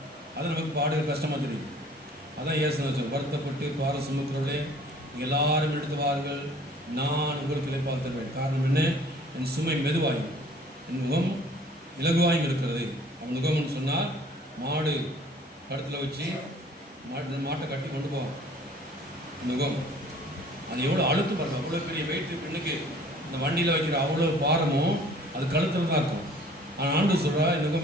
அது நமக்கு பாடுகள் கஷ்டமாக தெரியுது. அதான் இயேசு வச்சோம், வருத்தப்பட்டு பார சுமக்கிறவர்களே நீங்கள் எல்லாரும் எடுத்து வாருங்கள், நான் உங்களுக்கு இளைப்பால் தருவேன். காரணம் என்ன? என் சுமை மெதுவாயும் என் முகம் இலகுவாயும் இருக்கிறது. அவன் முகம்னு சொன்னால் மாடு கழுத்தில் வச்சு மாட்டை கட்டி கொண்டு போவான். முகம் அது எவ்வளோ அழுத்து பாருங்க, அவ்வளோ பெரிய வெயிட்டு பெண்ணுக்கு இந்த வண்டியில் வைக்கிற அவ்வளோ பாரமும் அது கழுத்தில் தான் இருக்கும். ஆனால் ஆண்டு சொல்கிறா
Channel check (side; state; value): both; normal; correlation 0.53